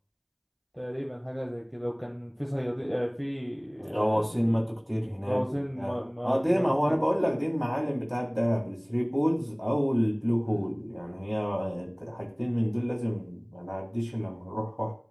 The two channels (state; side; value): identical; both; correlation 1.00